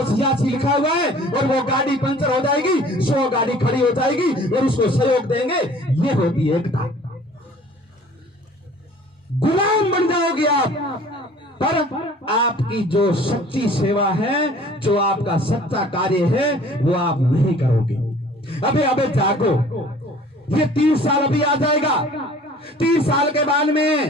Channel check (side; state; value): both; normal; correlation 0.50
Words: लिखा हुआ है और वो गाड़ी पंचर हो जाएगी, 100 गाड़ी खड़ी हो जाएगी और उसको सहयोग देंगे। ये होती है एकता। गुलाम बन जाओगे आप, पर आपकी जो सच्ची सेवा है, जो आपका सच्चा कार्य है, वो आप नहीं करोगे। अबे जागो, ये 30 साल अभी आ जाएगा, 30 साल के बाद